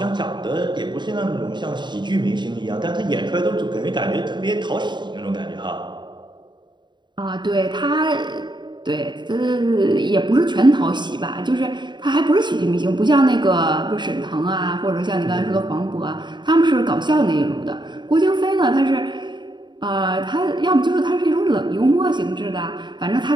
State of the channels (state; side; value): late; left; 0.22 ms